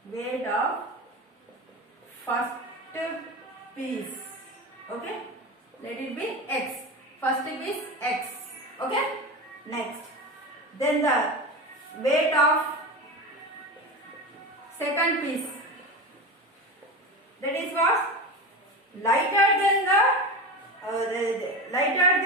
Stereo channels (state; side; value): normal; both; correlation 0.25